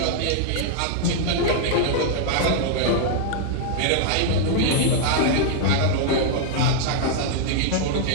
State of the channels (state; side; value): different; both; correlation -0.01